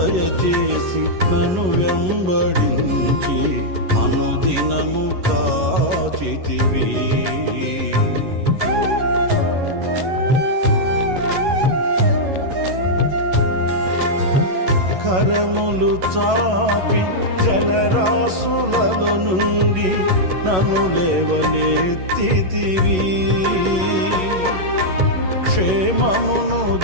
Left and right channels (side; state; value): left; late; 11 ms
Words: నన్ను వెంబడించి అనుదినము కాచితివి కరములు చాపి జలరాశులలో నుండి నన్ను లేవనెత్తితివి క్షేమమును